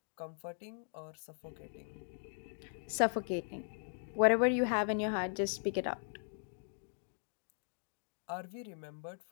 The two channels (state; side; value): silent; right; digital silence